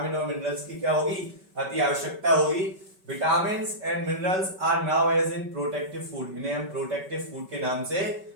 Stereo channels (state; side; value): late; left; 5.2 ms